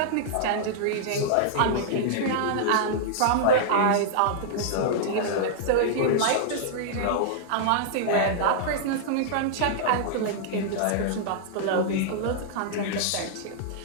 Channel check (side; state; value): both; different; correlation -0.01